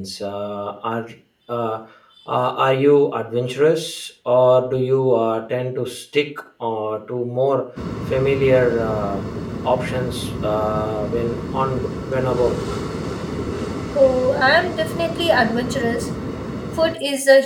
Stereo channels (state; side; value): identical; both; correlation 1.00